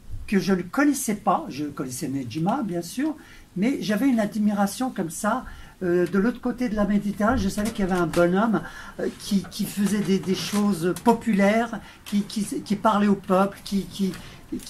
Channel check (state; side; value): identical; both; correlation 1.00